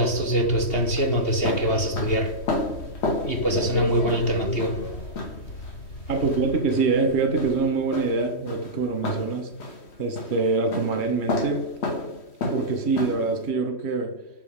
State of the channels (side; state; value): right; late; 3.1 ms